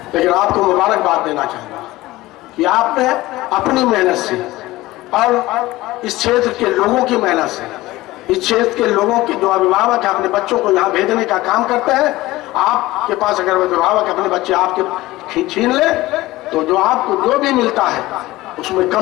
लेकिन आपको मुबारकबाद देना चाहूंगा कि आपने अपनी मेहनत से और इस क्षेत्र के लोगों की मेहनत से, इस क्षेत्र के लोगों के जो अभिभावक अपने बच्चों को यहाँ भेजने का काम करते हैं, आपके पास अगर अभिभावक अपने बच्चे आपके छीन ले तो जो आपको जो भी मिलता है उसमें कम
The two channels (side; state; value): right; quieter; 18.2 dB